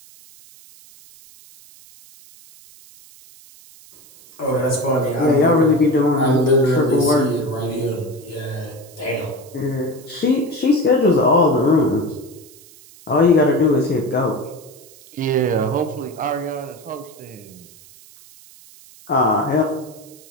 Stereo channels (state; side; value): noise; right; hiss, 23 dB below the sound